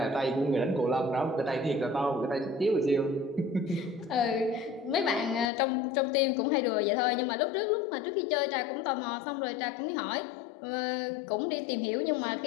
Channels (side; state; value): right; drops out; at 5.5 s